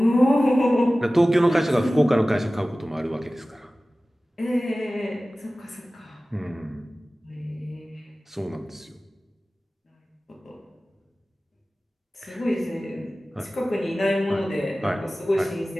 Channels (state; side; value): normal; both; correlation 0.97